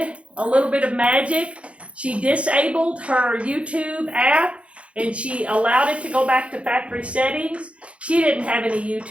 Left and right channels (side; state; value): left; late; 0.062 ms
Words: a little bit of magic. She disabled her YouTube app and she allowed it to go back to factory settings. She didn't have any